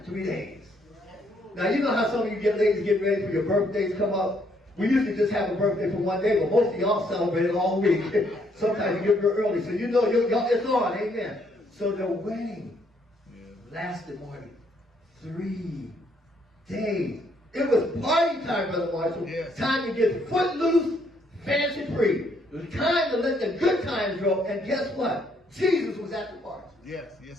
3 days. Now, you know how some of you ladies get ready for your birthdays come up? We usually just have a birthday for 1 day, but most of y'all celebrate it all week. Sometimes you get here early, so you know it's on, amen. So the wedding lasted more than 3 days. It was party time, Brother Marshall. Yes. Time to get footloose, fancy free. It was time to let the good times roll, and guess what? Jesus was at the party. Yes,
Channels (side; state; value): both; normal; correlation 0.70